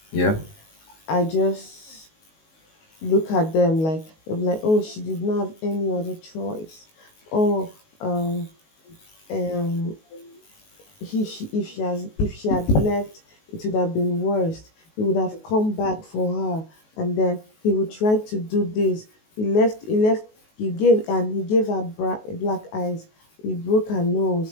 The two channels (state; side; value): late; right; 19 ms